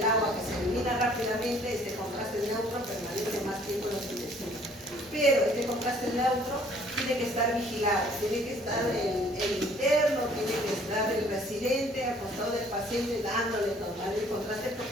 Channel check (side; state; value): both; normal; correlation 0.58